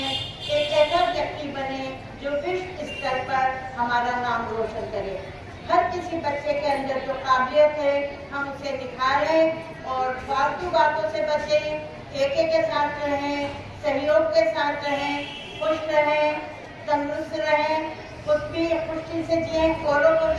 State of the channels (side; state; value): both; identical; correlation 1.00